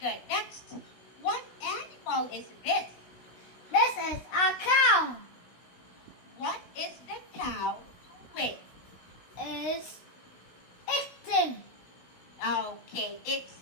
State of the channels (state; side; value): late; right; 16 ms